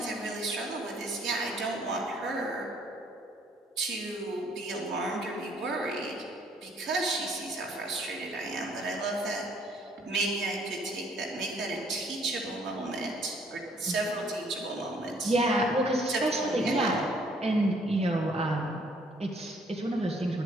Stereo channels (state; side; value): normal; both; correlation 0.63